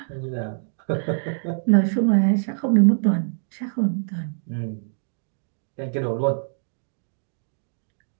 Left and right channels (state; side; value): silent; left; digital silence